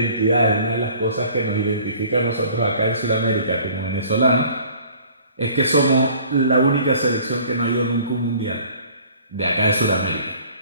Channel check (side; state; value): both; inverted; correlation -0.52